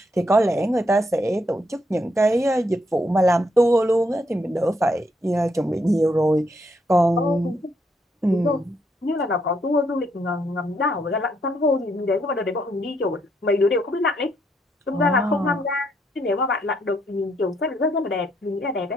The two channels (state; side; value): normal; both; correlation 0.75